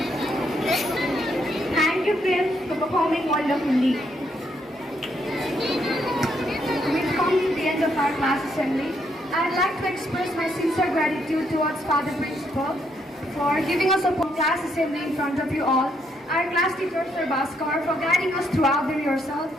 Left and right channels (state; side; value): normal; both; correlation 0.74